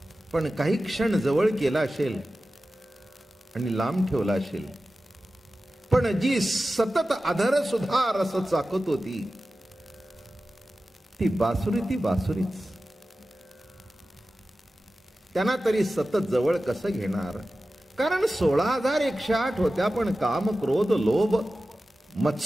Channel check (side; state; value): both; normal; correlation 0.94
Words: पण काही क्षण जवळ केला असेल आणि लांब ठेवला असेल, पण जी सतत अधर सुद्धा रस चाकत होती ती बासुरीच. त्यांना तरी सतत जवळ कसं घेणार? कारण 16,108 होत्या, पण काम, क्रोध, लोभ,